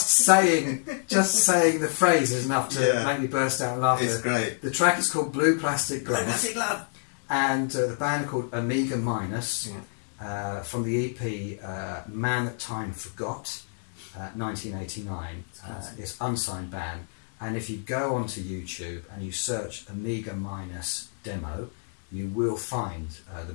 saying the phrase is enough to make me burst out laughing. It's great. The track is called Blue Plastic Glove. Blue Plastic Glove. And the band are called Omega Minus, from the EP Man That Time Forgot, 1989. It's unsigned band. And if you go onto YouTube and you search Omega Minus demo, you will find the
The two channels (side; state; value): right; silent; 60 dB below the other